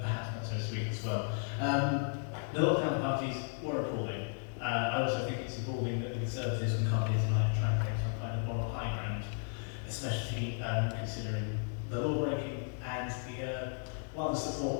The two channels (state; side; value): silent; right; 55 dB below the other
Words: perhaps not so sweet as well. The lockdown parties were appalling. I also think it's appalling that the Conservatives and companies might try and take some kind of moral high ground, especially considering the law breaking and while the